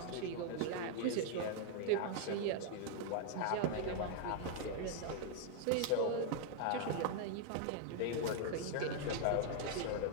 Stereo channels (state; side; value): different; both; correlation 0.00